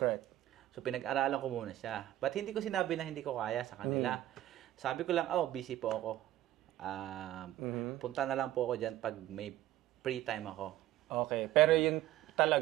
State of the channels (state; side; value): quieter; left; 14.0 dB